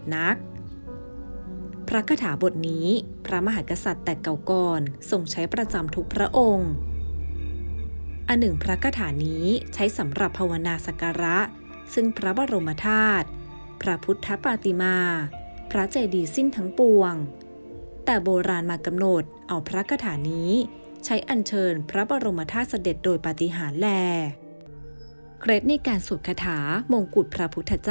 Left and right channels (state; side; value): inverted; both; correlation -1.00